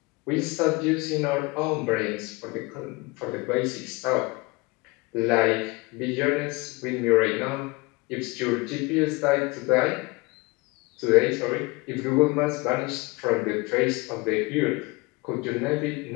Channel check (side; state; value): right; quieter; 24.9 dB